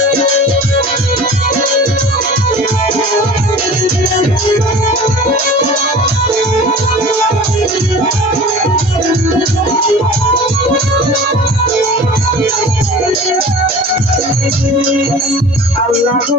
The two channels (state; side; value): normal; both; correlation 0.41